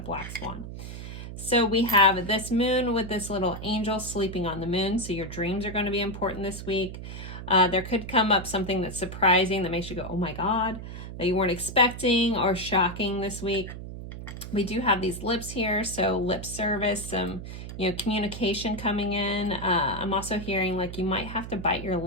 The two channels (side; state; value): right; noise; hum, 10 dB below the sound